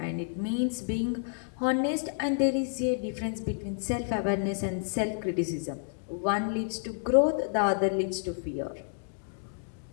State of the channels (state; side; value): silent; right; digital silence